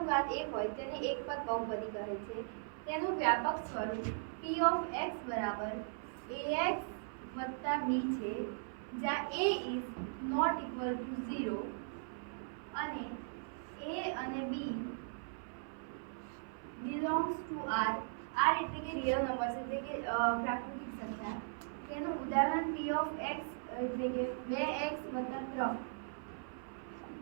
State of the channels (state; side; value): silent; left; 52 dB below the other